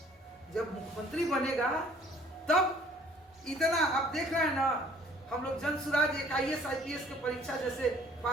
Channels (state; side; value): normal; both; correlation 0.56